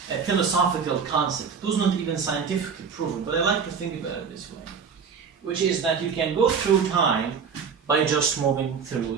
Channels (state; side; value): quieter; left; 6.2 dB